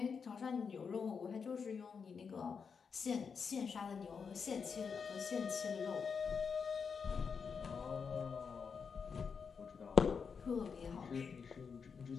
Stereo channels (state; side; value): quieter; right; 5.9 dB